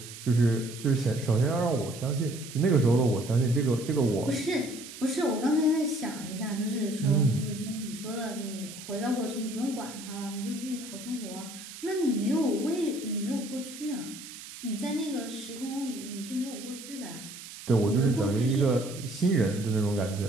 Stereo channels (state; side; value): noise; right; hiss, 14 dB below the sound